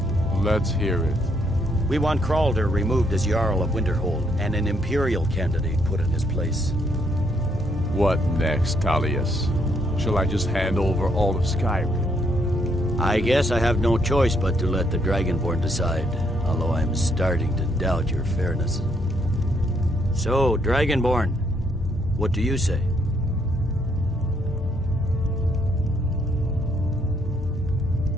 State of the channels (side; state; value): both; normal; correlation 0.72